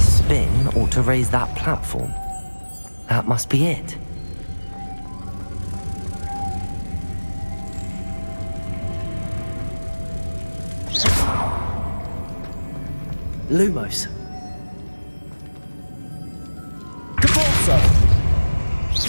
spin ought to raise that platform. That must be it. Lumos. Depulso.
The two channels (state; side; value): inverted; both; correlation -1.00